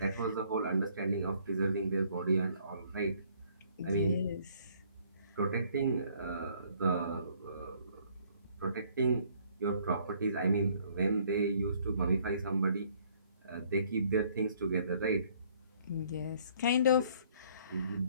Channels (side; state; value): both; inverted; correlation -0.62